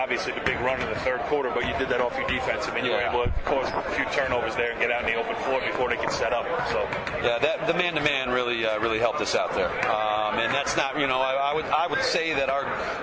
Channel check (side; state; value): both; identical; correlation 1.00